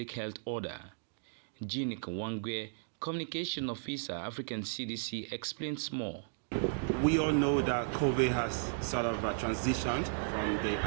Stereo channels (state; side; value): silent; left; digital silence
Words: health order. Jean Kwangwe, Communication Officer, African CDC, explains more. We all know that COVID has sort of transitioned from the